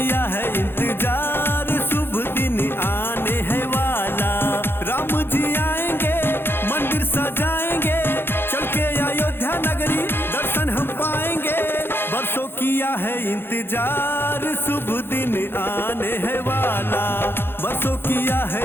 है इंतजार, शुभ दिन आने है वाला। राम जी आएंगे, मंदिर सजाएंगे, चल के अयोध्या नगरी दर्शन हम पाएंगे। बरसों किया है इंतजार, शुभ दिन आने है वाला। बरसों किया है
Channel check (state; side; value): late; right; 0.11 ms